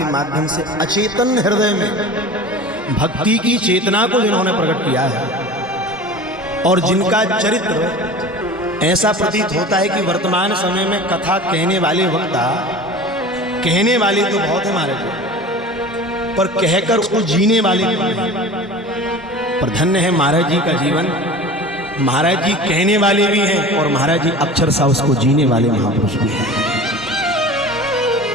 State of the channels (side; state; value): both; normal; correlation 0.37